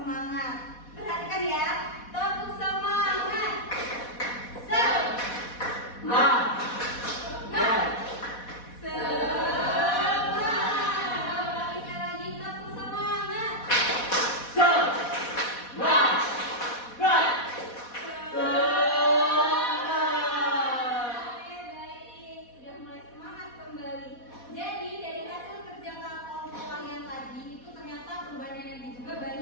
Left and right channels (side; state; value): right; late; 4.1 ms